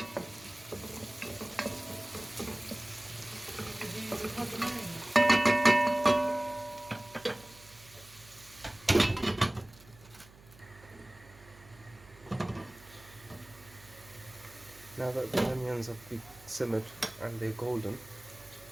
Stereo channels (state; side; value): noise; right; hum, 23 dB below the sound